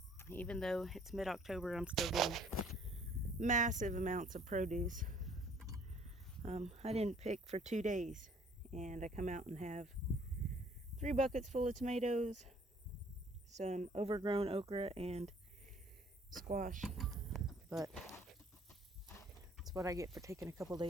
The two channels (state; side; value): normal; both; correlation 0.58